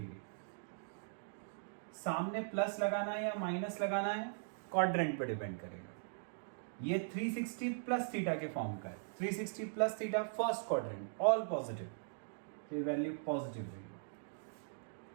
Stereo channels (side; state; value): left; silent; digital silence